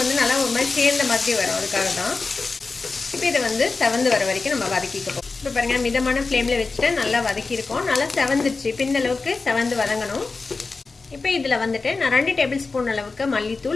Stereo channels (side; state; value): right; quieter; 4.0 dB